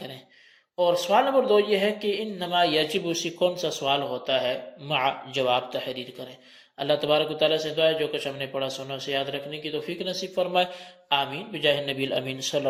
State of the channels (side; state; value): both; identical; correlation 1.00